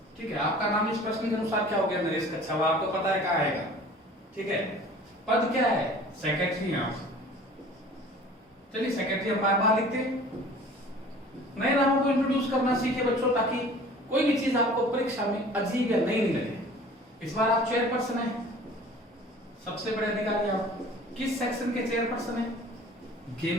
ठीक है। आपका नाम इस प्रश्न के अनुसार क्या हो गया? नरेश कच्छावा। आपको पता है कहाँ आएगा, ठीक है। पद क्या है? सेक्रेटरी है आप। चलिए सेक्रेटरी हम बार बार लिखते हैं। नए नामों को इंट्रोड्यूस करना सीखे बच्चों, ताकि कोई भी चीज आपको परीक्षा में अजीब या नई नहीं लगे। इस बार आप चेयरपर्सन हैं, सबसे बड़े अधिकारी आप। किस सेक्शन के चेयरपर्सन हैं?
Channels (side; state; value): both; normal; correlation 0.46